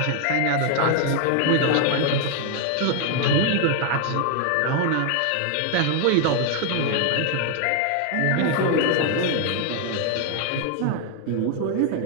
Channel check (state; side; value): different; both; correlation 0.00